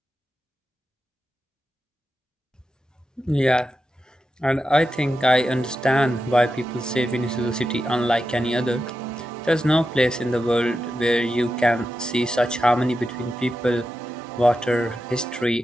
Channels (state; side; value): normal; both; correlation 0.89